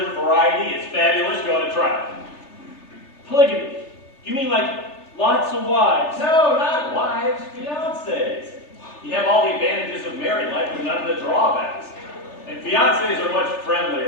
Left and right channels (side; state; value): right; late; 3.3 ms